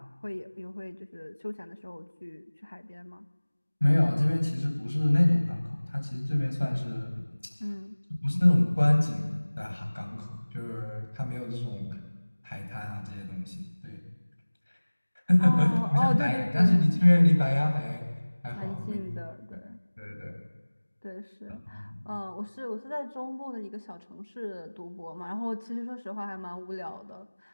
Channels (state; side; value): inverted; both; correlation -1.00